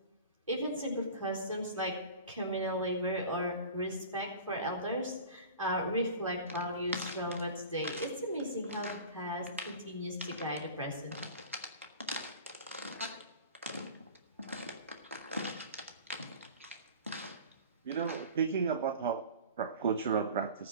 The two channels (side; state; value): both; inverted; correlation -0.39